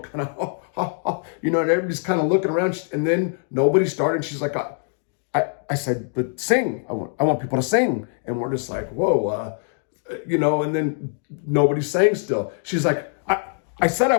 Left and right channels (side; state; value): right; silent; 59 dB below the other